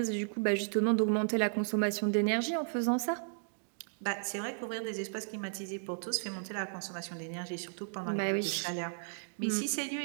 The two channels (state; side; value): silent; left; digital silence